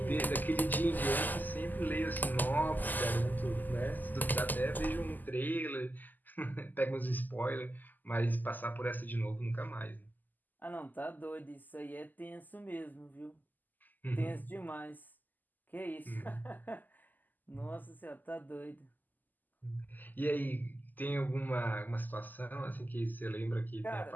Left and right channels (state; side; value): late; right; 0.085 ms